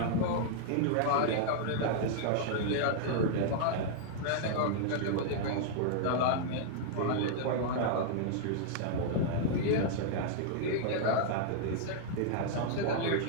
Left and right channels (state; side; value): different; both; correlation -0.01